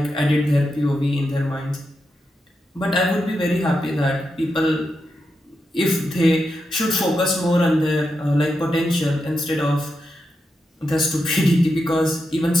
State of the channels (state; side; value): normal; both; correlation 0.87